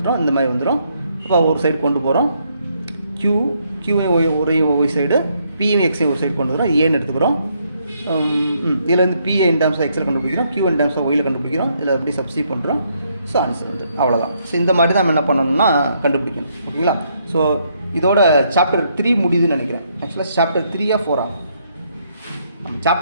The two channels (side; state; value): both; inverted; correlation -0.73